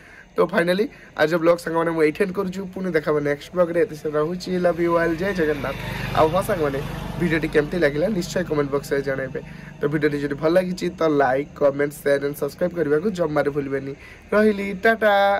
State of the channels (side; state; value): both; identical; correlation 1.00